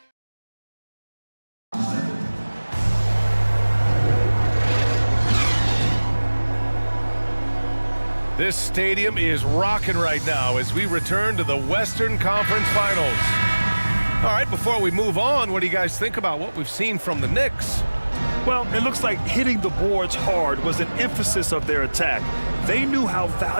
This stadium is rocking right now as we return to the Western Conference Finals. All right, before we move on, what do you guys think about what we've seen from the Knicks? Well, it looks like hitting the boards hard was an emphasis of their attack. They knew how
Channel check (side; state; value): both; inverted; correlation -1.00